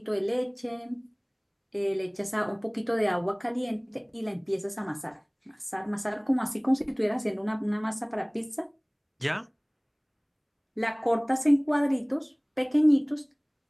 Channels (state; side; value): identical; both; correlation 1.00